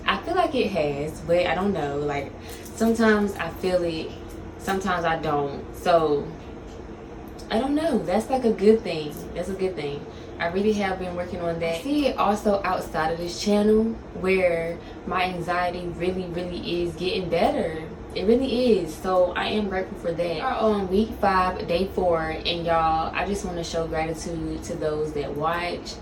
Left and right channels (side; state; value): both; identical; correlation 1.00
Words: I feel like it has, but I don't know. Like, sometimes I feel it, sometimes I don't. So I don't know. That's like a good thing. That's a good thing. I really have been working on that. I see it also outside of this channel where my anxiety really is getting better. It really is. So I am grateful for that. We are on week 5, day 4, and y'all, I just want to show gratitude to those that watch,